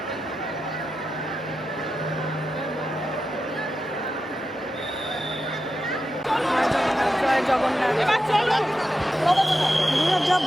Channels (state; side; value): normal; both; correlation 0.89